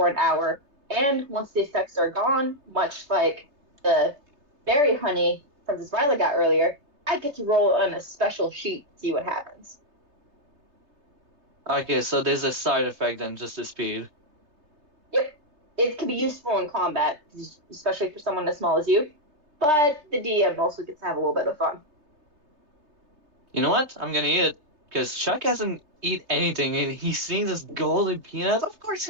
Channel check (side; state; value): left; late; 3.3 ms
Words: an hour, and once the effects are gone, much like the berry honey Princess Violet got earlier, I get to roll on a special sheet to see what happens. Okay, so there's a side effect than just the speed. Yep, it can be useful in combat, especially for someone as small as you. But the DM also gets to have a little bit of fun. You know what? I'm gonna eat it because Chuck hasn't eat anything, and he's seeing this golden peanut. Of course,